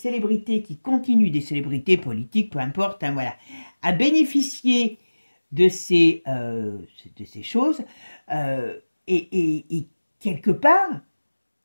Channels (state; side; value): inverted; both; correlation -1.00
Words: qui continuent, des célébrités politiques, peu importe, hein, voilà, à bénéficier de ces choses. Et quelque part,